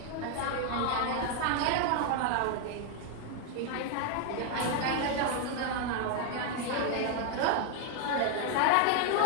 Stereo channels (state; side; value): different; both; correlation 0.00